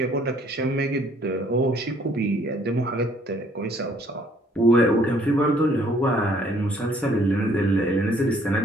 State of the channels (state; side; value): normal; both; correlation 0.62